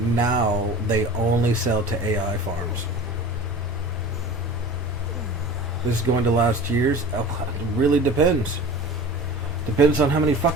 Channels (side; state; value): both; normal; correlation 0.39